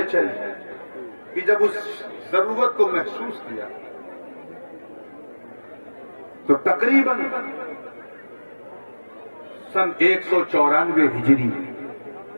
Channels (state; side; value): inverted; both; correlation -1.00